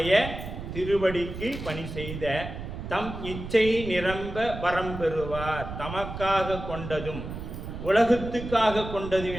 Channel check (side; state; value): right; noise; rumble, 8 dB below the sound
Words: திருவடிக்கு பணி செய்த தம் இச்சை நிரம்ப வரம் பெறுவார். தமக்காக கொண்டதும் உலகத்துக்காக கொண்டதும்